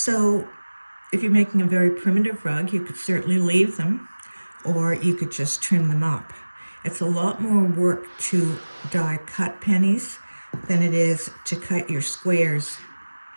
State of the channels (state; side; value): inverted; both; correlation -1.00